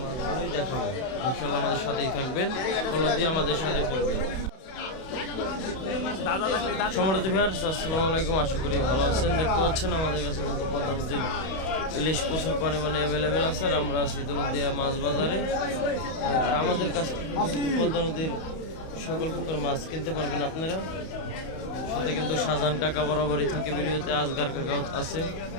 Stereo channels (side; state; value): right; late; 31 ms